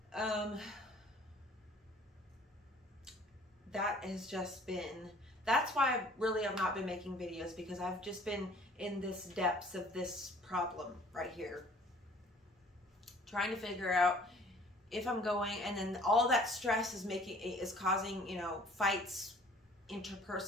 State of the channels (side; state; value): both; normal; correlation 0.53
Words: That has just been, that's why I've not been making videos, because I've just been in this depths of this problem right here, trying to figure out if I'm going, and then all that stress is causing, you know, fights